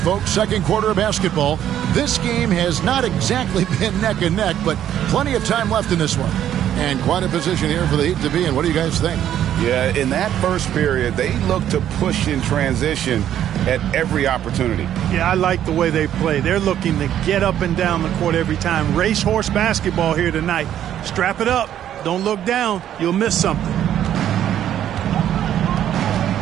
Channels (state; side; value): quieter; left; 10.9 dB